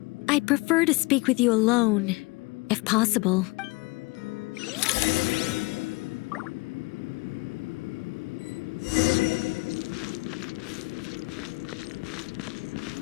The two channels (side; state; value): right; quieter; 25.7 dB